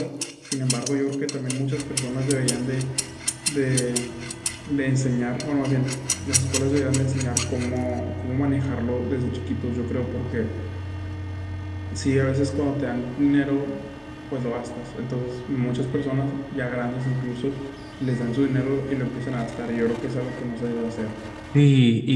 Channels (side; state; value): both; identical; correlation 1.00